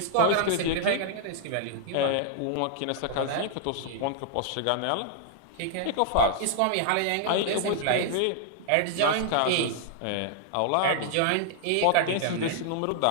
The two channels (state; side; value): different; both; correlation 0.00